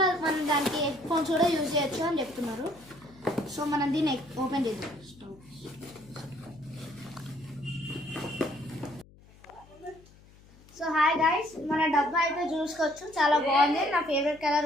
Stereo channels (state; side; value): noise; left; hum, 25 dB below the sound